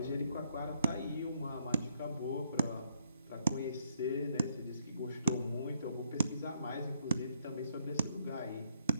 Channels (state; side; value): inverted; both; correlation -0.72